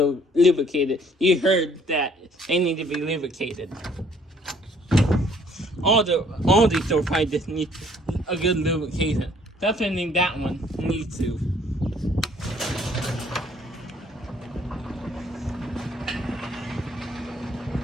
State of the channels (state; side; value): normal; both; correlation 0.60